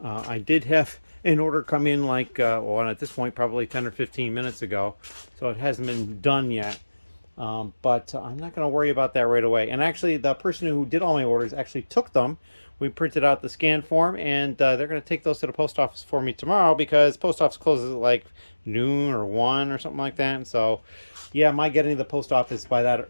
I did have an order come in like, well, at this point, probably 10 or 15 minutes ago, so it hasn't been done yet. But I'm not going to worry about that right away. And actually, the person who did all my orders actually took them. We printed out the scan form, and they're going to take those to the post office for me tomorrow because post office closes at like noon or 1 or something like that. And so, yeah, my getting to the post office by that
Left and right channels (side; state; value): both; inverted; correlation -1.00